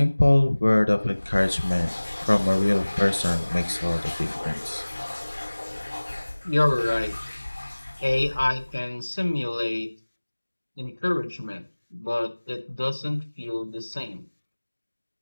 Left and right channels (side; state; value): both; inverted; correlation -1.00